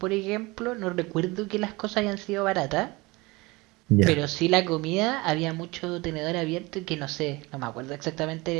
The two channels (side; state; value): left; quieter; 23.4 dB